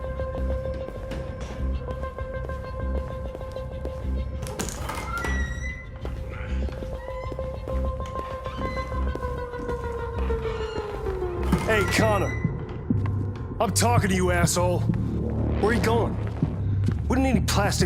Hey, Connor. I'm talking to you, asshole. Where are you going? Wouldn't any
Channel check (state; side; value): identical; both; correlation 1.00